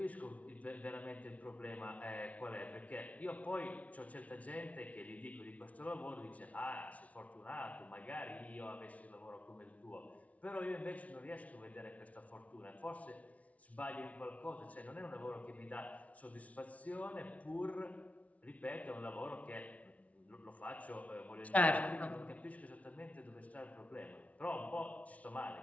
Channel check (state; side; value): late; right; 0.067 ms